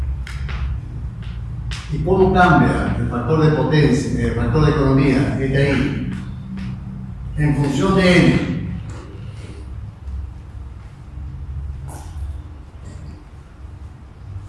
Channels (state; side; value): identical; both; correlation 1.00